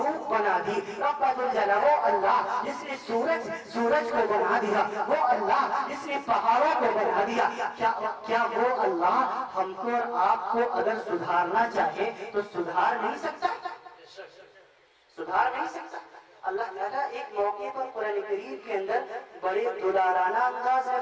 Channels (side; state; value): both; identical; correlation 1.00